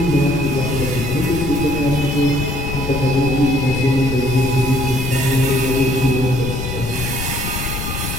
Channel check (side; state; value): left; noise; rumble, 5 dB below the sound